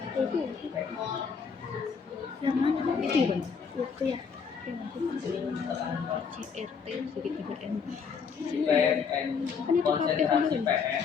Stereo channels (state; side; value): quieter; right; 5.9 dB